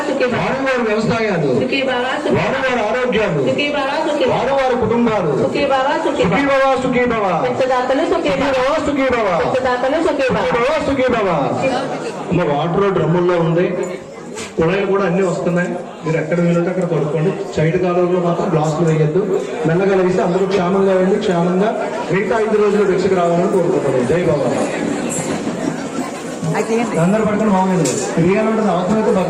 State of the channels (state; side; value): identical; both; correlation 1.00